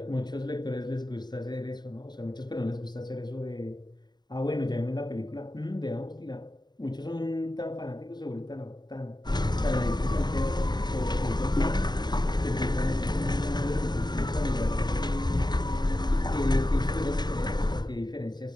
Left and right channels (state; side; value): late; right; 0.21 ms